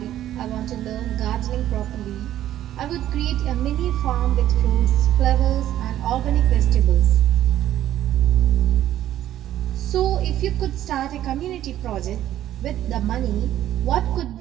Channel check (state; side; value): quieter; left; 12.5 dB